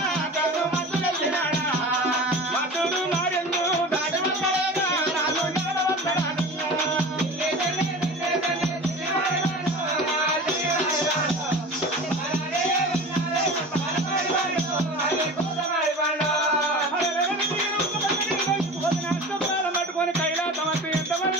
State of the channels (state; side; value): normal; both; correlation 0.35